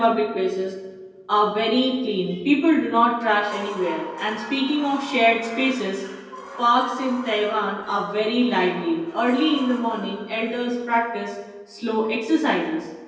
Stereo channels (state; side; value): identical; both; correlation 1.00